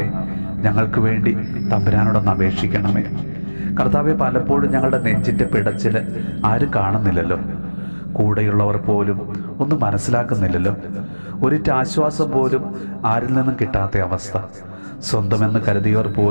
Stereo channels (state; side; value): inverted; both; correlation -1.00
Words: ഞങ്ങൾക്ക് വേണ്ടി തമ്പുരാനോടൊന്ന് അപേക്ഷിക്കണമേ. കർത്താവെ, പലപ്പോഴും ഞങ്ങളുടെ നെഞ്ചിൻ്റെ പിടച്ചിൽ ആരും കാണുന്നില്ലല്ലോ. കൂടെയുള്ളവർ പോലും ഒന്നും മനസ്സിലാക്കുന്നില്ലല്ലോ. ഒരിറ്റ് ആശ്വാസം പോലും ആരിൽ നിന്നും കിട്ടാത്ത അവസ്ഥ. സ്വന്തമെന്ന് കരുതിയവർ